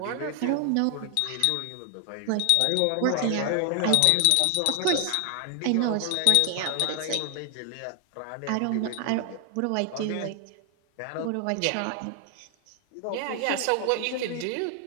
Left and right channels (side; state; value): both; different; correlation 0.00